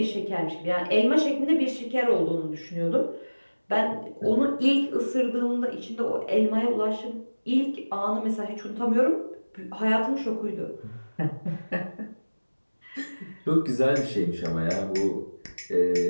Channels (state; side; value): inverted; both; correlation -1.00